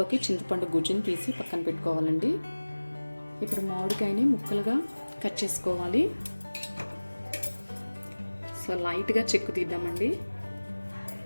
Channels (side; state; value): both; inverted; correlation -1.00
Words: చింతపండు గుజ్జుని తీసి పక్కన పెట్టుకోవాలండి. ఇప్పుడు మామిడికాయని ముక్కలుగా కట్ చేసుకోవాలి. సో లైట్గా చెక్కు తీద్దామండి.